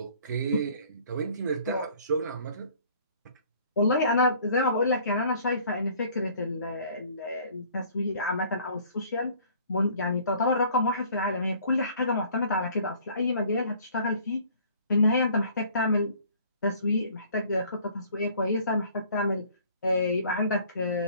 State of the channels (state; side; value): inverted; both; correlation -0.54